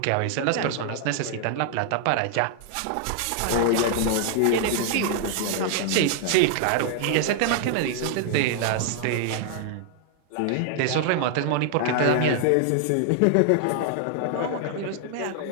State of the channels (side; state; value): both; different; correlation 0.00